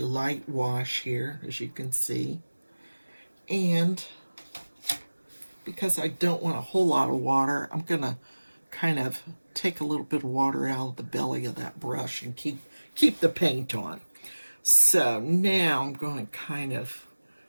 wash here, as you can see. And because I don't want a whole lot of water, I'm going to kind of take a little bit of water out of the belly of that brush and keep the paint on. So now I'm going to kind of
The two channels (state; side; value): inverted; both; correlation -1.00